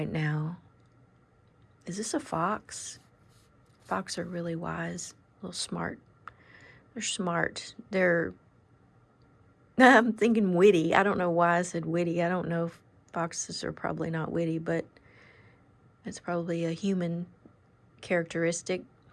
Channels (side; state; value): both; identical; correlation 1.00